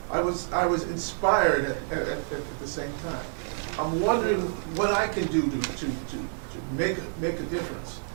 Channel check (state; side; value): silent; left; digital silence